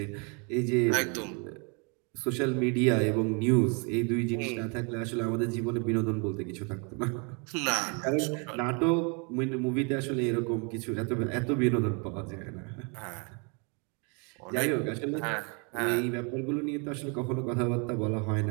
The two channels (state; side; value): quieter; left; 34.2 dB